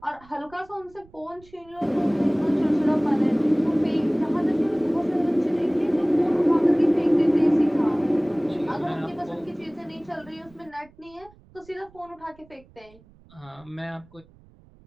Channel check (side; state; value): right; noise; rumble, 27 dB below the sound